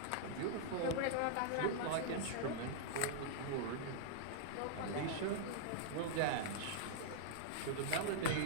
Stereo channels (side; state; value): both; different; correlation -0.01